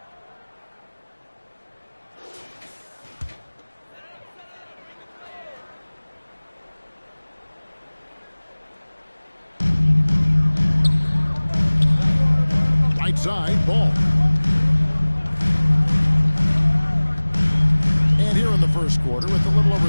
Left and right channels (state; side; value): inverted; both; correlation -1.00